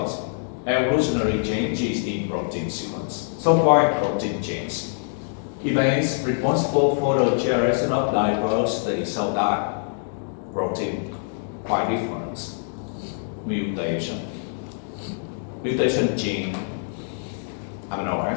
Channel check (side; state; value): right; silent; digital silence